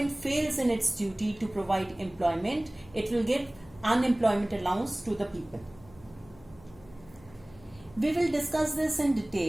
fails in its duty to provide employment, it will give unemployment allowance to the people. We will discuss this in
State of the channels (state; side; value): noise; left; hum, 23 dB below the sound